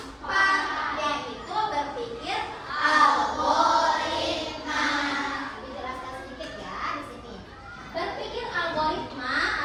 yaitu berpikir algoritma. Dijelaskan sedikit ya di sini. Berpikir algoritma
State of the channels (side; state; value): both; identical; correlation 1.00